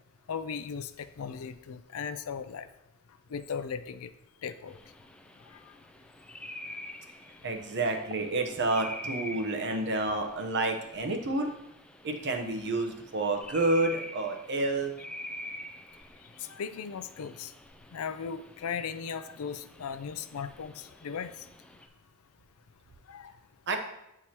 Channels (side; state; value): both; normal; correlation -0.15